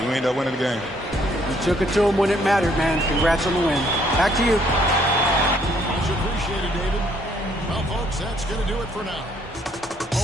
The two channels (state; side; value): normal; both; correlation 0.66